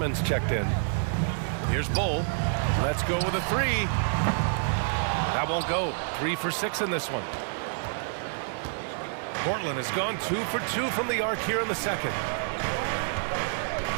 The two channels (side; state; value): left; silent; 59 dB below the other